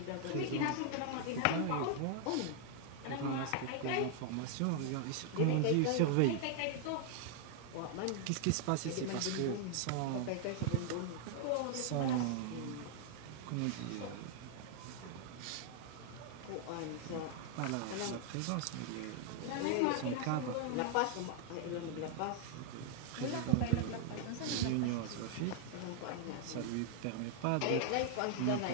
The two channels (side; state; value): both; different; correlation 0.00